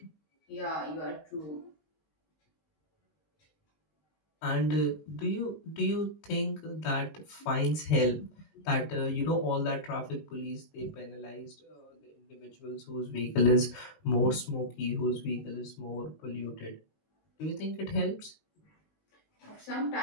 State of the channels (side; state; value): right; late; 19 ms